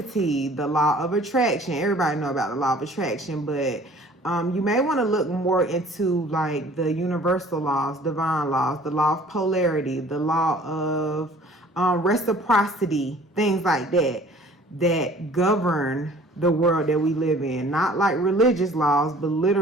the law of attraction. Everybody know about the law of attraction, but you may want to look more into like the universal laws, divine laws, the law of polarity, the law of reciprocity, things like that, that govern the world that we live in. Not like religious laws, but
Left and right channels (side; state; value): both; normal; correlation 0.51